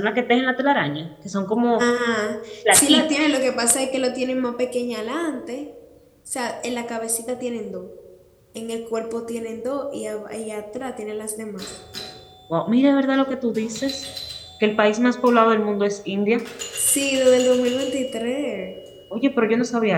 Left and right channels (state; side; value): identical; both; correlation 1.00